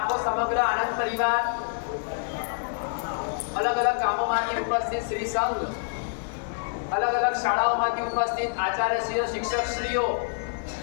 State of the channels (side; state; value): right; silent; digital silence